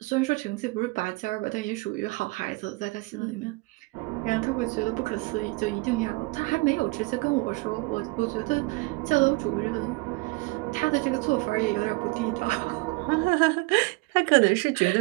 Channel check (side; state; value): left; quieter; 25.2 dB